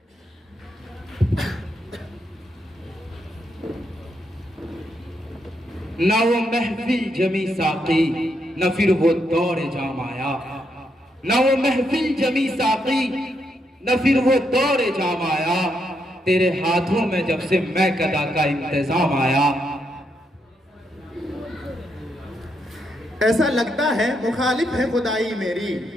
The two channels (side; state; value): both; normal; correlation 0.79